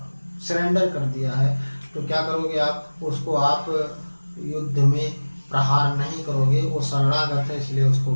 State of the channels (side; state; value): both; inverted; correlation -1.00